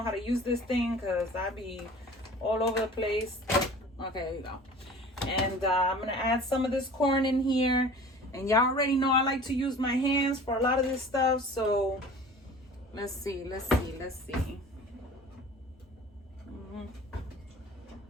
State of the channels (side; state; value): both; normal; correlation 0.43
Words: how to use this thing because I be all over the place. Okay, there you go. And I'm going to add some of this corn in here. And y'all already know I like to use my hands for a lot of this stuff. So let's see.